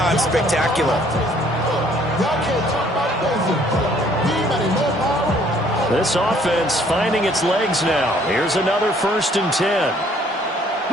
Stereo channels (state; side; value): normal; both; correlation 0.61